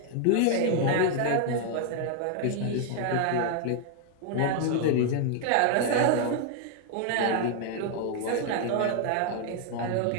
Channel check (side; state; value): both; different; correlation 0.00